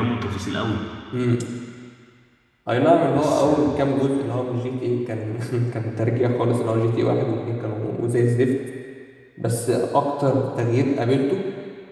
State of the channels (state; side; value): identical; both; correlation 1.00